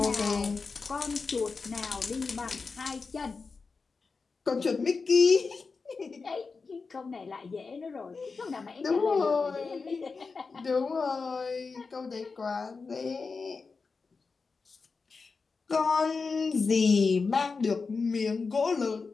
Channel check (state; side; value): quieter; right; 4.6 dB